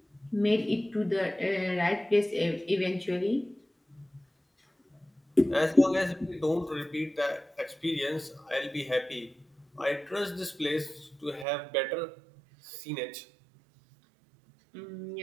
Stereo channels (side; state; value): left; drops out; at 11.5 s